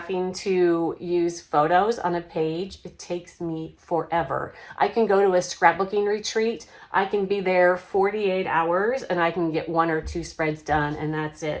to use photos on a page. It takes me forever. I can go to a scrapbooking retreat. I can be there 48 hours and I can get 1 or 2 spreads done and that's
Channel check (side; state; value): both; identical; correlation 1.00